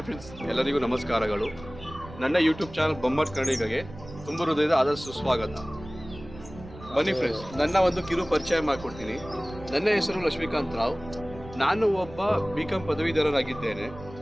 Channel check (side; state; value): right; noise; rumble, 16 dB below the sound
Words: friends, ಎಲ್ಲರಿಗೂ ನಮಸ್ಕಾರಗಳು. ನನ್ನ ಯೂಟ್ಯೂಬ್ ಚಾನಲ್ ಬೊಂಬಾಟ್ ಕನ್ನಡಿಗಗೆ ತುಂಬ ಹೃದಯದ ಆದಷ್ಟು ಸ್ವಾಗತ. ಬನ್ನಿ ಫ್ರೆಂಡ್ಸ್, ನನ್ನ ಒಂದು ಕಿರು ಪರಿಚಯ ಮಾಡಿಕೊಡ್ತೀನಿ. ನನ್ನ ಹೆಸರು ಲಕ್ಷ್ಮೀಕಾಂತ್ ರಾವ್. ನಾನು ಒಬ್ಬ BCom ಪದವೀಧರರಾಗಿದ್ದೇನೆ.